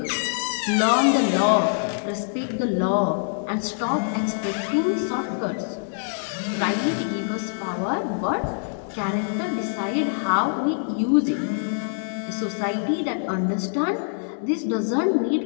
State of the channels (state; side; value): silent; right; 62 dB below the other